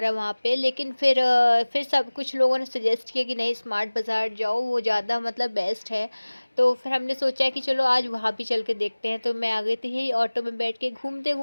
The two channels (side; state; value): both; inverted; correlation -1.00